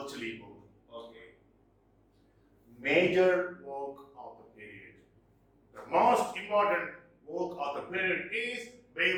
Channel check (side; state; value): both; identical; correlation 1.00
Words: book. Okay. Major work of the period. The most important work of the period is